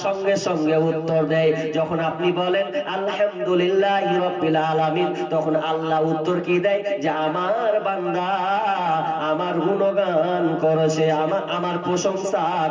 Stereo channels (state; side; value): identical; both; correlation 1.00